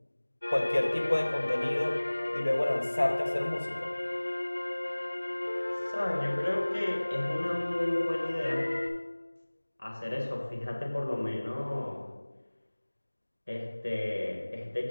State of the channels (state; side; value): inverted; both; correlation -1.00